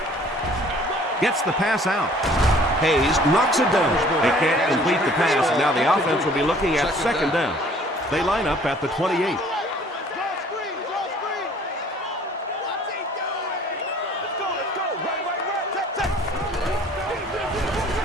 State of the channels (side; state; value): both; normal; correlation 0.54